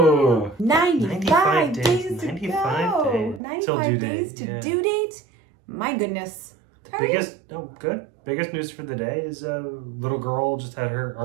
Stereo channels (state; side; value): drops out; left; at 3.4 s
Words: 95 days to 95 go. days. 95 due days date, to yeah. due date. My goodness. Biggest news for the day is a little girl just had